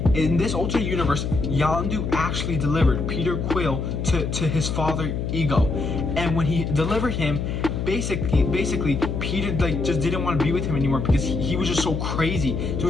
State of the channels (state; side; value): noise; left; hum, 2 dB below the sound